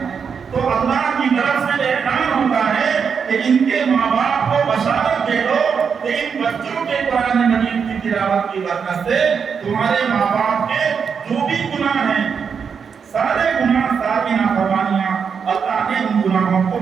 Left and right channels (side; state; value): left; quieter; 6.4 dB